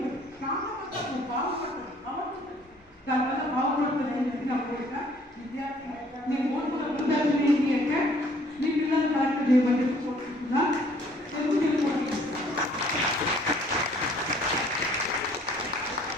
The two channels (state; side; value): normal; both; correlation 0.59